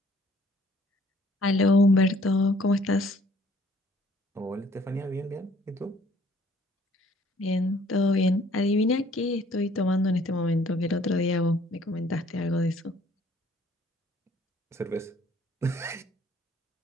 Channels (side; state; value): both; normal; correlation 0.59